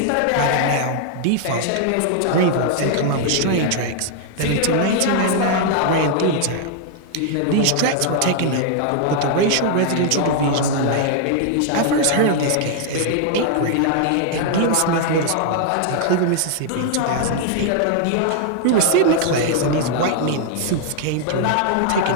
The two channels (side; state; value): both; different; correlation 0.00